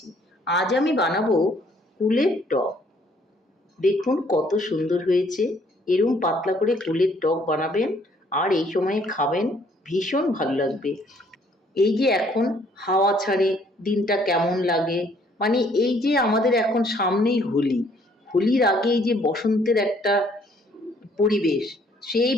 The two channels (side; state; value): both; normal; correlation 0.63